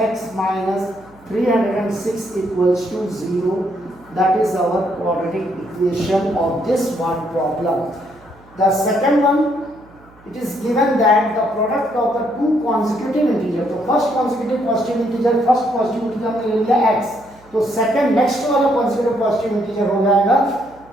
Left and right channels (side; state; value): right; noise; hum, 27 dB below the sound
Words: minus 306 equals to 0. That is our quadratic equation of this one problem. The second one, it is given that the product of the two consecutive integers, the first consecutive positive integer, first positive integer हमने ले लिया x, तो second next वाला consecutive positive integer हो जाएगा